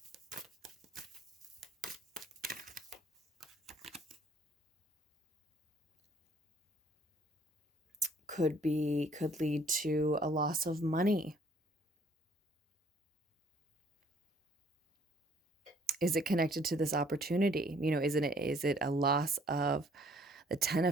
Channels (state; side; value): normal; both; correlation 0.60